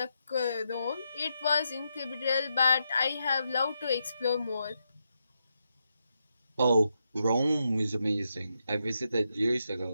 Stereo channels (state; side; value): inverted; both; correlation -0.84